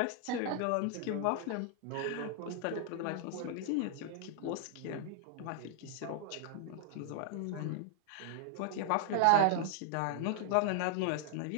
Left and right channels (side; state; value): both; different; correlation 0.00